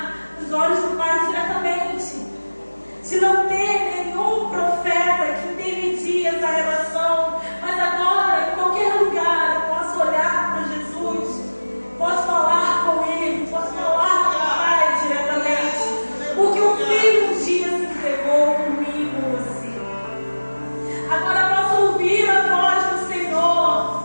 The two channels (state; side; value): inverted; both; correlation -1.00